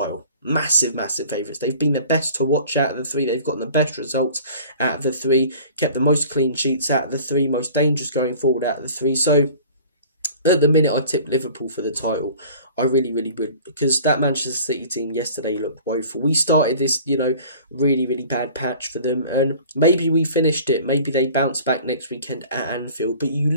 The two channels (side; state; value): both; inverted; correlation -0.46